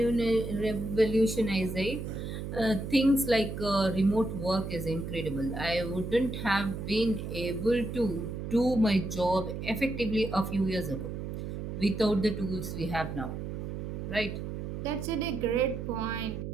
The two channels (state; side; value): noise; right; hum, 6 dB below the sound